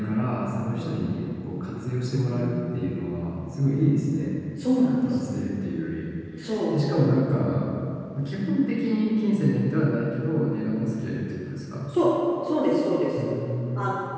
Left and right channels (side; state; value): both; identical; correlation 1.00